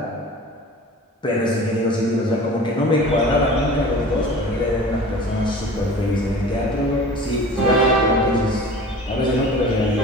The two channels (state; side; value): normal; both; correlation 0.40